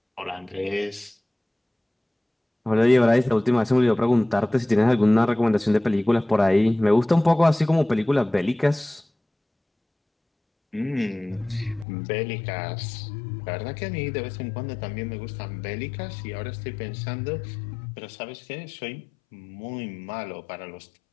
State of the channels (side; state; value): right; drops out; at 11.9 s